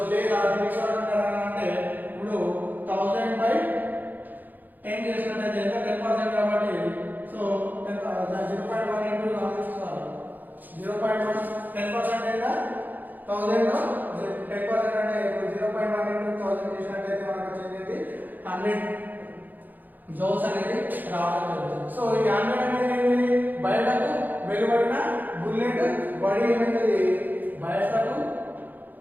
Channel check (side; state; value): left; late; 0.085 ms